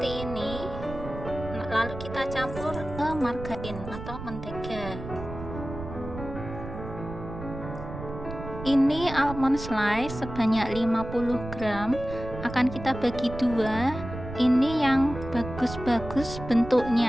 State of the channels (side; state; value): right; noise; rumble, 10 dB below the sound